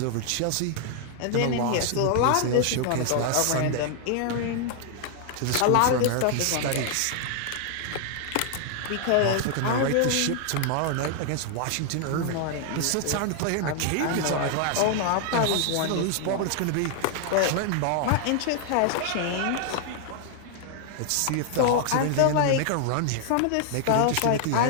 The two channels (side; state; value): both; different; correlation 0.00